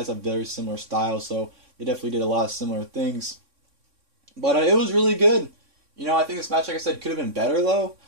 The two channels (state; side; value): late; left; 3.6 ms